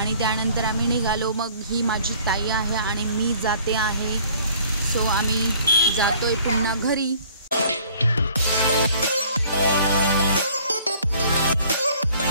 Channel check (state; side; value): inverted; both; correlation -0.55